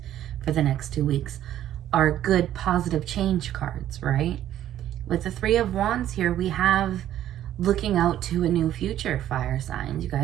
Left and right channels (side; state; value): left; quieter; 12.0 dB